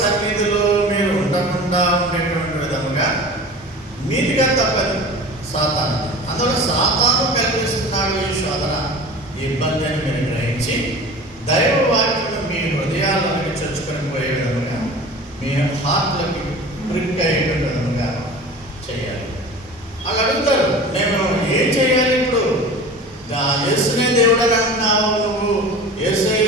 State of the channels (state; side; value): normal; both; correlation 0.37